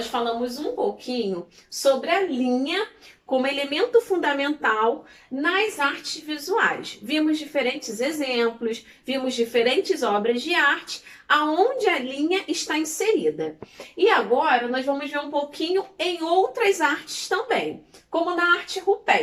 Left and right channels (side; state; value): both; identical; correlation 1.00